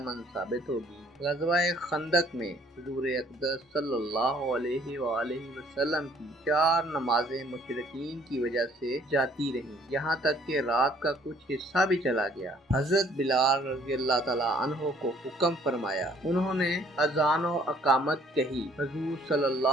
साबित होगी। ग़ज़वा-ए खंदक में हुज़ूर अक़दस सल्लल्लाहु अलैहि वसल्लम की 4 नमाज़ें मुशरिकीन की वजह से जाती रहीं, यहाँ तक कि रात का कुछ हिस्सा भी चला गया। हज़रत बिलाल रज़ियल्लाहु तआला अन्हु को हुक्म फरमाया। उन्होंने अज़ान व अकामत कही। हुज़ूर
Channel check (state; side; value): normal; both; correlation 0.59